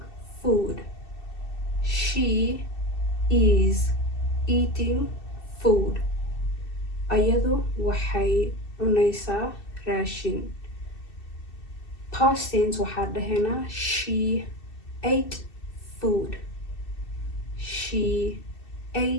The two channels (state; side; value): late; right; 2.7 ms